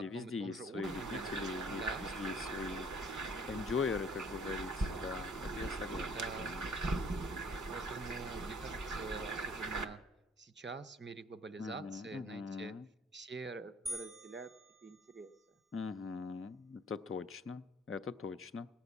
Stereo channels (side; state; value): both; normal; correlation 0.55